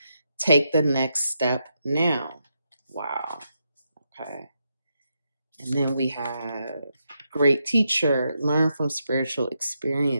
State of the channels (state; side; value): inverted; both; correlation -0.83